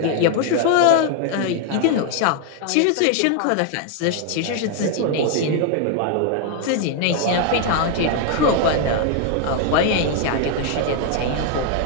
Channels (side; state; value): both; different; correlation 0.00